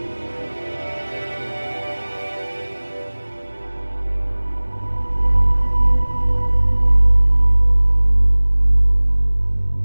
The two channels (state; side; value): inverted; both; correlation -1.00